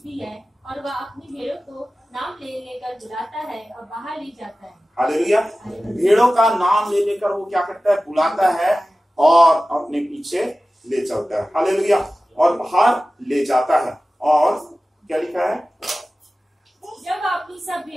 है और वह अपनी भेड़ों को नाम ले लेकर बुलाता है और बाहर ले जाता है। हालेलुया। भेड़ों का नाम ले लेकर वो क्या करता है? बुलाता है और अपने पीछे ले चलता है। हालेलुया। और बाहर ले जाता है। और क्या लिखा है? जब अपनी सब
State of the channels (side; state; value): both; normal; correlation 0.96